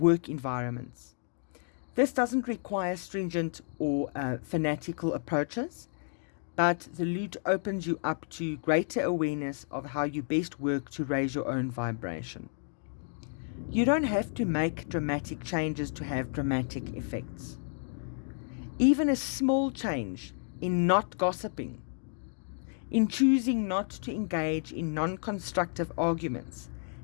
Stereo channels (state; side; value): silent; right; digital silence